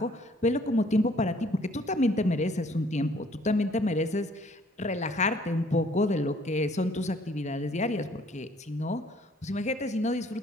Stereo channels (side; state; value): both; normal; correlation 0.60